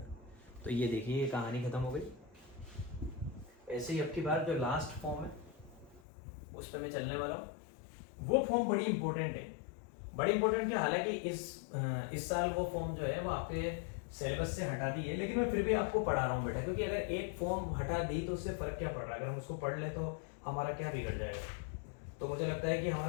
तो ये देखिए ये कहानी खत्म हो गई। ऐसे ही अब की बार जो लास्ट फॉर्म है उस पर मैं चलने वाला हूँ, वो फॉर्म बड़ी इंपॉर्टेंट है, बड़ी इंपॉर्टेंट है। हालांकि इस साल वो फॉर्म जो है वो आपके सिलेबस से हटा दी है, लेकिन मैं फिर भी आपको पढ़ा रहा हूँ बेटा, क्योंकि अगर एक फॉर्म हटा दी तो उससे फर्क क्या पड़ रहा है, अगर हम उसको पढ़ ले तो हमारा क्या बिगड़ जाएगा। तो मुझे लगता है कि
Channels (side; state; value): right; drops out; at 6.0 s